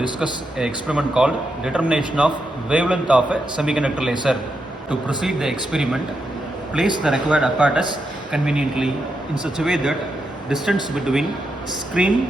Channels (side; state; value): both; normal; correlation 0.84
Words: an experiment called determination of wavelength of a semiconductor laser. To proceed the experiment, place the required apparatus conveniently in such a way that distance between